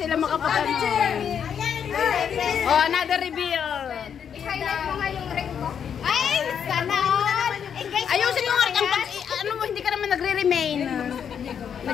makapagano. Oh, another reveal. I-highlight mo nga yung ring mo. Ay, sana all. Ayusin mo nga ano mo, hindi ka naman nagre-remain.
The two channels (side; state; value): right; quieter; 7.9 dB